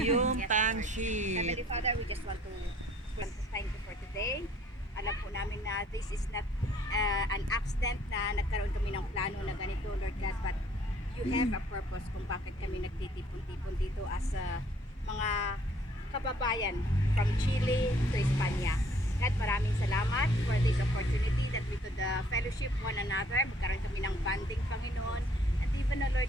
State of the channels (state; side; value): normal; both; correlation 0.59